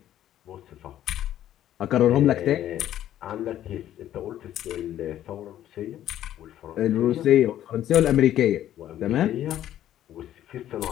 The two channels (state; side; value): quieter; right; 12.1 dB